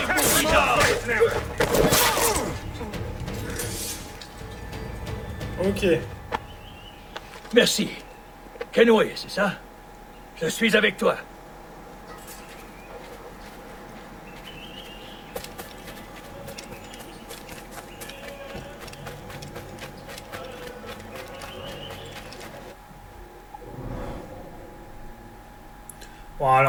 bourrinas. Ok. Merci. Kenway, c'est ça? Je suis avec toi. Bon,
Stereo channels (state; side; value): identical; both; correlation 1.00